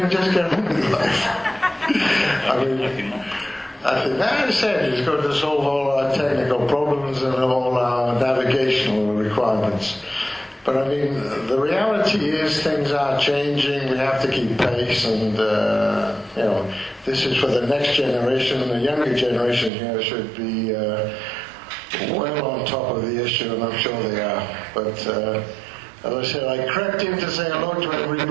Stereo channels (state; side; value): drops out; left; at 19.7 s